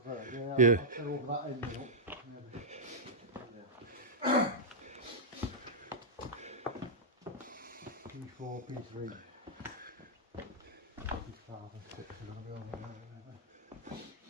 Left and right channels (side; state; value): both; normal; correlation -0.08